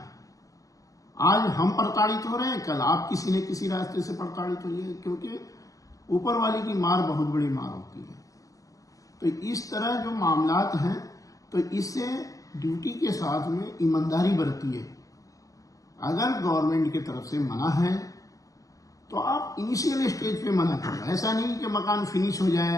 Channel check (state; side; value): late; right; 0.16 ms